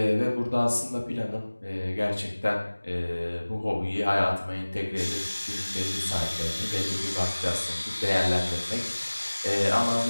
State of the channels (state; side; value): inverted; both; correlation -1.00